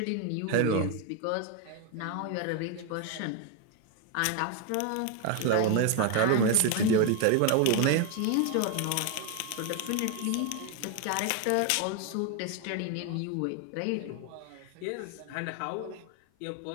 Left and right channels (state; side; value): different; both; correlation 0.01